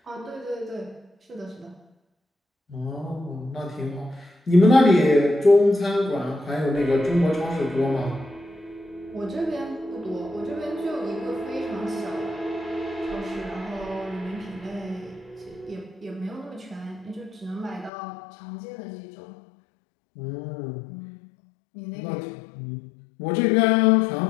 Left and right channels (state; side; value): drops out; right; at 17.9 s